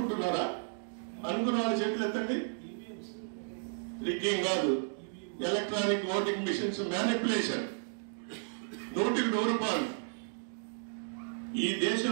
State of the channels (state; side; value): silent; left; digital silence